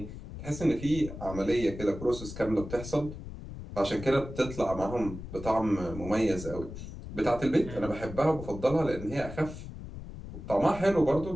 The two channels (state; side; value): noise; left; rumble, 11 dB below the sound